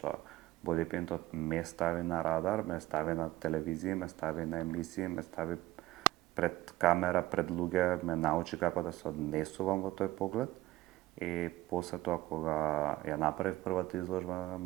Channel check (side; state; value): left; quieter; 16.7 dB